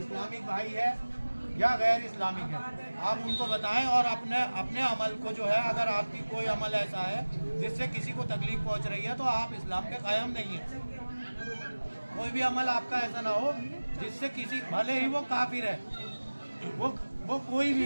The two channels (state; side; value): inverted; both; correlation -1.00